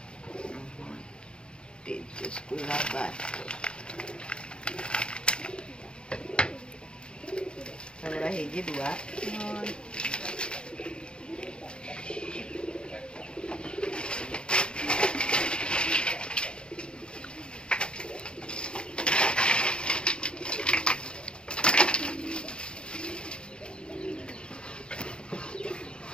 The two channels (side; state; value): right; late; 0.053 ms